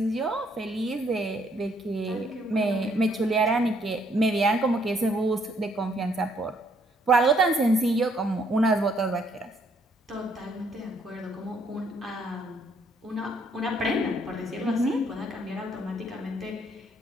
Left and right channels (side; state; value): both; normal; correlation 0.68